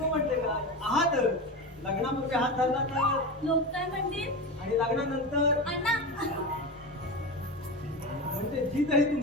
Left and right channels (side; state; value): both; normal; correlation 0.23